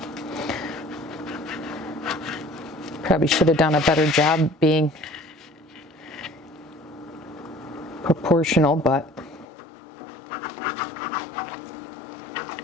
Probably should have done a better job being proportional, but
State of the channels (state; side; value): drops out; right; at 9.5 s